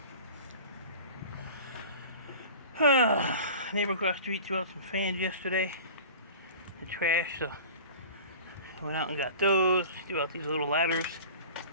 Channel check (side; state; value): both; inverted; correlation -0.38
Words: Neighbor across the street threw out some fans yesterday. The trash, so I went out and got those. Threw out these little ladders.